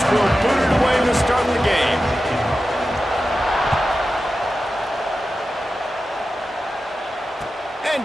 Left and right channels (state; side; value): normal; both; correlation 0.92